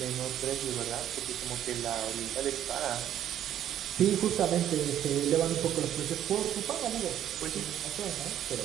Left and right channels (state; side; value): quieter; left; 11.0 dB